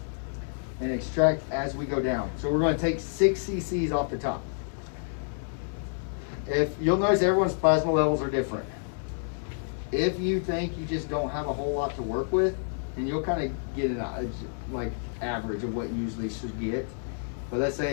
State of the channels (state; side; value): silent; right; digital silence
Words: and extract as we go down. So we're going to take 6 cc's off the top. If you'll notice, everyone's plasma levels are different. If you think you just don't have a whole lot to work with, and you'll kind of get an like average of what you usually should get. But let's